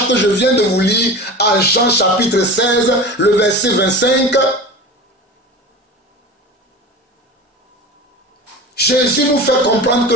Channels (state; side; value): normal; both; correlation 0.32